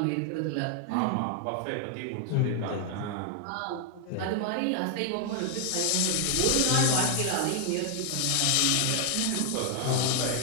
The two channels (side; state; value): both; different; correlation 0.00